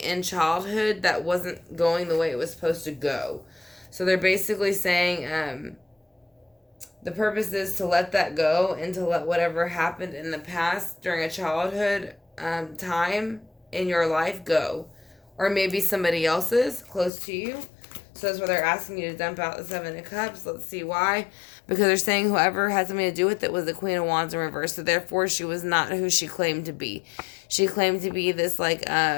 childhood that wasn't going the way it was supposed to go. So they're basically saying the purpose is to let that go and to let whatever happened in the past during a childhood time in your life go. Or maybe somebody else's close to you. So that's why they're asking you to dump out the Seven of Cups. Let's see why. Because they're saying whoever had something to do with it was the Queen of Wands in reverse. So therefore, she was not who she claimed to be. She claimed to be this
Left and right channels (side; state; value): right; drops out; at 17.1 s